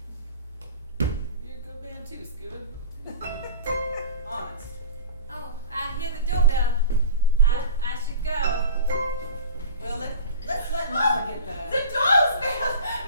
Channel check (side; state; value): both; inverted; correlation -0.38